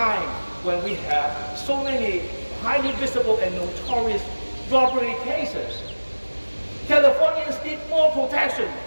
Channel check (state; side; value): inverted; both; correlation -1.00